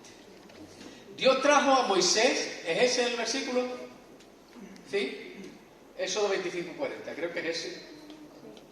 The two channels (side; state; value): both; identical; correlation 1.00